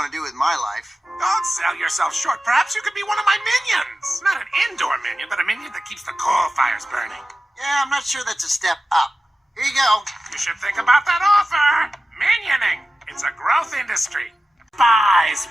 to do with my life. Don't sell yourself short. Perhaps you could be one of my minions. Not an indoor minion, but a minion that keeps the coal fires burning. Yeah, I'm not sure that's a step up. Here you go. You should think about that offer. Minioning. It's a growth industry. Buys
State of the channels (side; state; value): both; normal; correlation 0.94